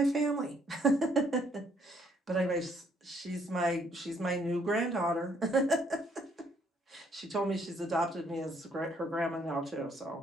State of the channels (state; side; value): normal; both; correlation 0.67